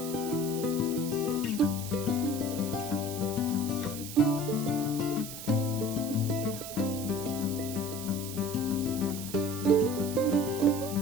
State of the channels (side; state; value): right; noise; hiss, 10 dB below the sound